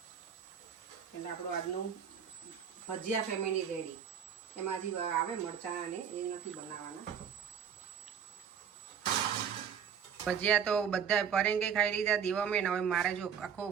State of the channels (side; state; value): left; quieter; 7.7 dB